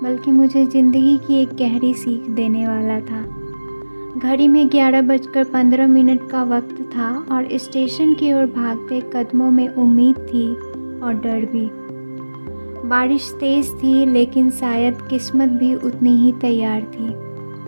बल्कि मुझे ज़िंदगी की एक गहरी सीख देने वाला था। घड़ी में 11:15 का वक्त था और स्टेशन की ओर भागते कदमों में उम्मीद थी और डर भी। बारिश तेज़ थी, लेकिन शायद किस्मत भी उतनी ही तैयार थी।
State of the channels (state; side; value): inverted; both; correlation -1.00